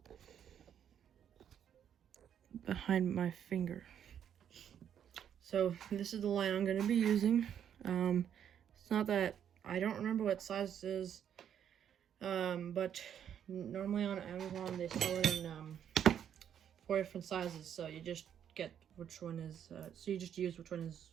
behind my finger. So this is the line I'm going to be using. It's not that, I don't remember what size it is, but normally on Amazon they sell it in 4 different sizes, so you just get which one is, so you just use which one is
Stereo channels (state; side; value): quieter; left; 9.1 dB